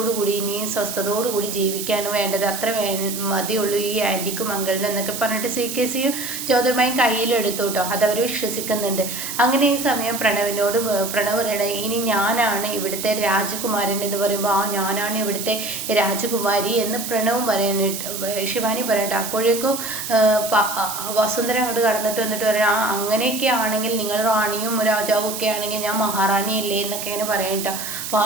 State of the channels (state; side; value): noise; right; hiss, 6 dB below the sound